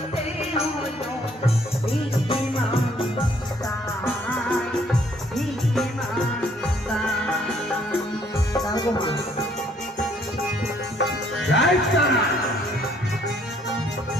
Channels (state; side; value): normal; both; correlation 0.64